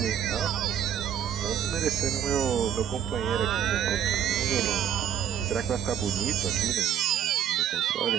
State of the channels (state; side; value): quieter; left; 9.4 dB